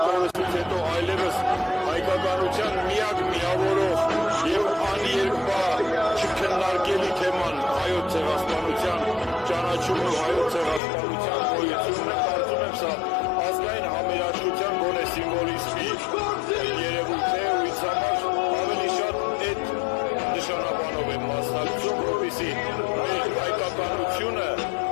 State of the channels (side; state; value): right; drops out; at 10.8 s